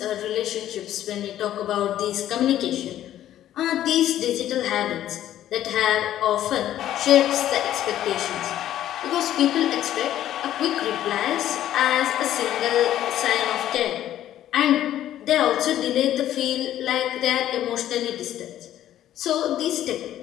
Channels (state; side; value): quieter; right; 12.2 dB